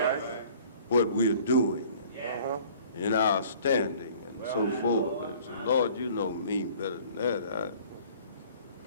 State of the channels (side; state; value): both; inverted; correlation -0.51